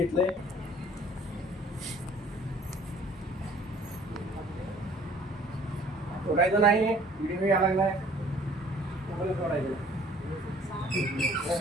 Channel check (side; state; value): both; normal; correlation 0.54